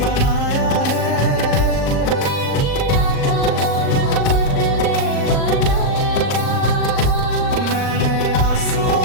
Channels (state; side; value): late; right; 39 ms